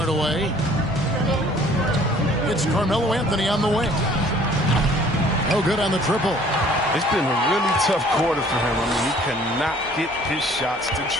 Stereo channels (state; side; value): normal; both; correlation 0.55